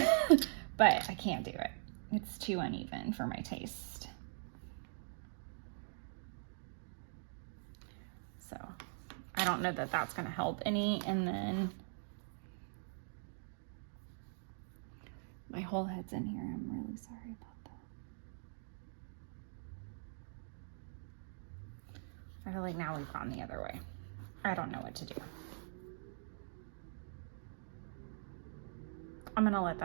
I can't do it. It's too uneven for my taste. So I don't know that that's going to help any. And then my whole head's in here. I'm really sorry about that. I feel like now we've gone the other way. I don't know what to do. I'm going to let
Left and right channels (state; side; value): silent; left; digital silence